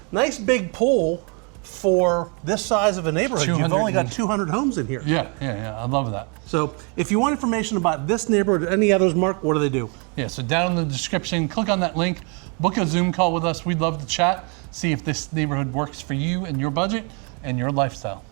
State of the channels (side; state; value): left; quieter; 35.2 dB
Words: Nice big pool for this size of a neighborhood. You've only got 200 homes in here. Yeah. I love that. So if you want information about this neighborhood or any others, Mark, what do they do? Yeah, so down in the description, click on that link, book a Zoom call with us. We'd love to chat, see if this neighborhood works for you and your budget and your lifestyle.